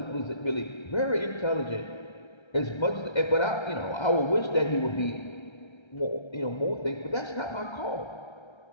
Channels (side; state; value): right; late; 1.3 ms